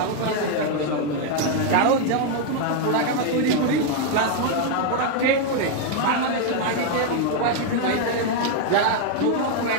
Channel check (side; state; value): both; different; correlation 0.00